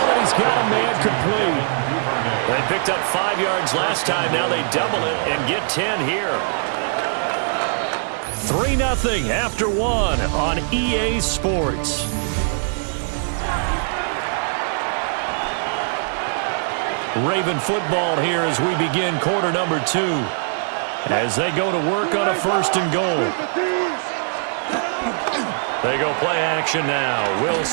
and he's got a man complete. They picked up 5 yards last time. Now they double it and get 10 here. 3-0 after 1 on EA Sports. Raven football here as we begin quarter number 2. As they go to work on a 1st and goal. They go play action now.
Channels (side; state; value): left; silent; 64 dB below the other